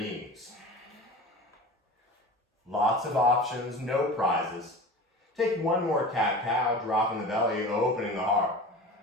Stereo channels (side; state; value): both; normal; correlation 0.34